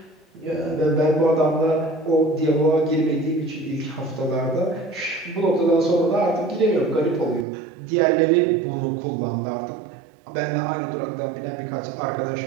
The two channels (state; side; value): drops out; left; at 7.5 s